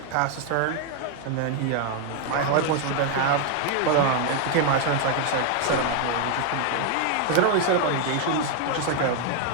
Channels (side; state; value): both; different; correlation 0.00